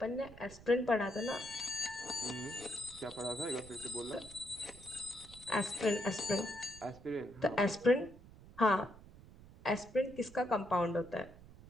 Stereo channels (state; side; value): noise; right; rumble, 19 dB below the sound